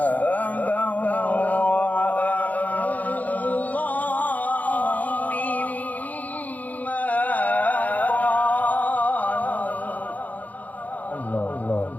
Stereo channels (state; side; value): late; right; 0.079 ms